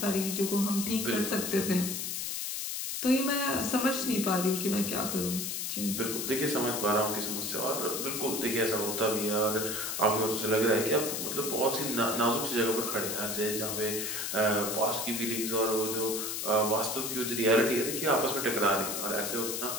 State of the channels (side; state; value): left; noise; hiss, 3 dB below the sound